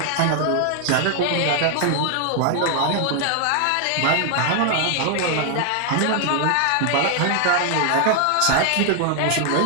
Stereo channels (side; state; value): both; different; correlation 0.00